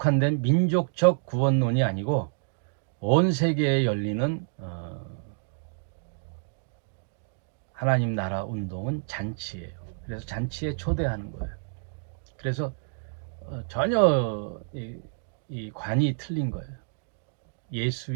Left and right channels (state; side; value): silent; left; digital silence